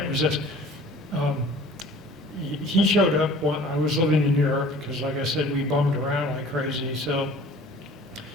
resist. He showed up when I was living in Europe because, like I said, we bummed around like crazy. So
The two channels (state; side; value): normal; both; correlation 0.47